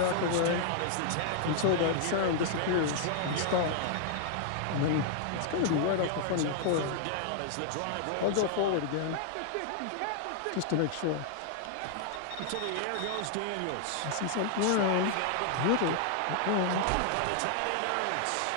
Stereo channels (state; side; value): different; both; correlation -0.01